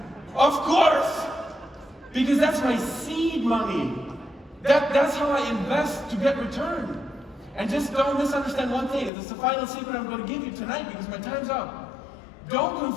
of course. Because that's my seed money. That's how I invest to get return. And just don't misunderstand one thing. This is the final secret I'm going to give you tonight because my time's up. Don't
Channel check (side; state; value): right; drops out; at 9.1 s